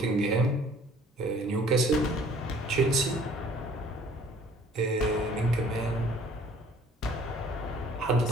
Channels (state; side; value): normal; both; correlation 0.53